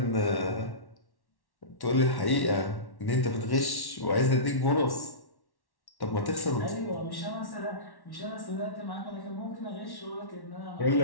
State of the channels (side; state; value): right; late; 1.1 ms